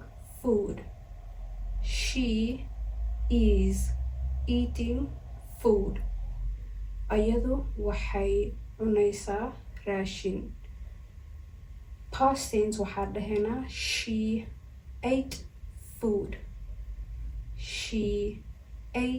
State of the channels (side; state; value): both; identical; correlation 1.00